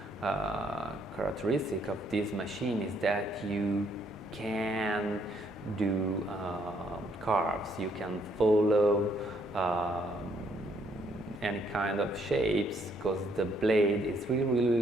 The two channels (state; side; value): normal; both; correlation 0.69